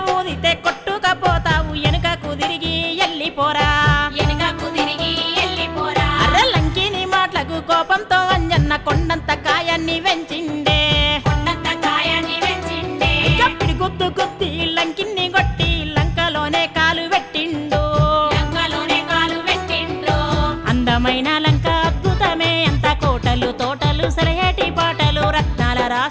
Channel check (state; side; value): identical; both; correlation 1.00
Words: ఊదితే కొట్టుకపోతావు వెనుకకు తిరిగి ఎల్లిపోరా. వెనుకకు తిరిగి ఎల్లిపోరా. అర్ర లంకిని మాటలకు కోపంతో అంజన్న కొండంత కాయాన్ని వెంచిండే, కొండంత కాయాన్ని వెంచిండే. కప్పిడి గుద్దు గుద్ది లంకిని కొట్టి లంకలోనే కాలు పెట్టిండు, లంకలోనే కాలు పెట్టిండ్రు. అందమైన లంక అద్భుతమే అంత కోటలు తోటలు సలహేటి పాటలు రత్నాల